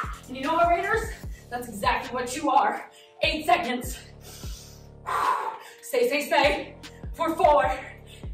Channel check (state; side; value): identical; both; correlation 1.00